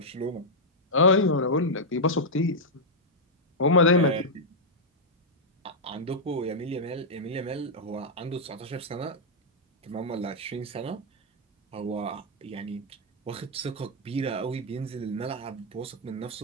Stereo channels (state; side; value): normal; both; correlation -0.05